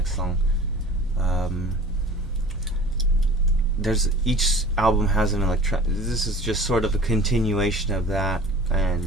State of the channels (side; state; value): both; normal; correlation 0.43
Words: song. There's, each album has an this is just sort of a continuation of that,